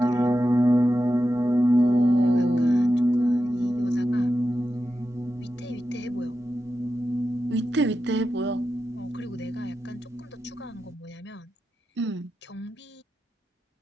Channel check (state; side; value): normal; both; correlation 0.90